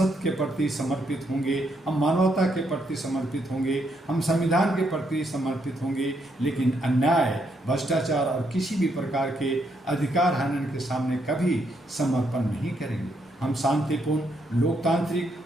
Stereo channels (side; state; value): both; normal; correlation 0.76